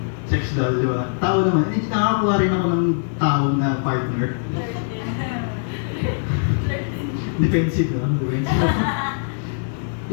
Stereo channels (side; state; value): right; silent; digital silence